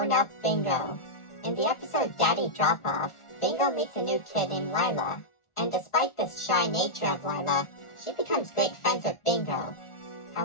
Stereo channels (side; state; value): right; late; 1.4 ms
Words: Bingo. In the episode Daddy Drop-Off, Bingo meets a new kid named Lila, and despite the shy nature of Lila, she becomes great friends with Bingo.